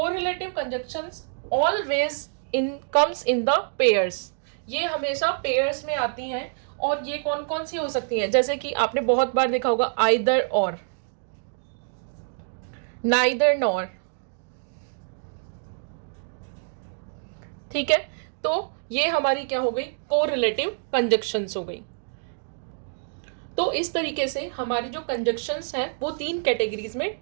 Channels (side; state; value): left; silent; digital silence